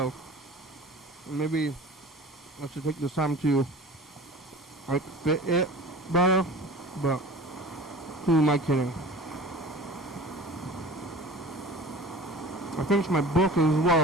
And maybe I should take this time to like fit it better. But who am I kidding? I finished my book as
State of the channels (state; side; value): normal; both; correlation 0.39